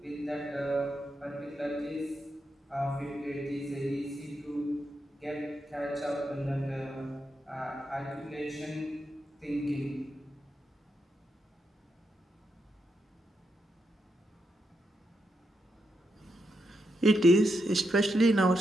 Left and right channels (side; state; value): both; normal; correlation 0.84